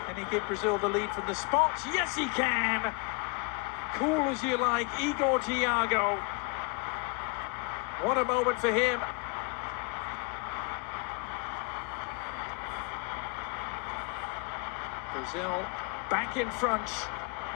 Can he give Brazil the lead from the spot? Yes, he can! Cool as you like, Igor Thiago. What a moment for him. Brazil back in front,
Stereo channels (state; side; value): quieter; right; 29.8 dB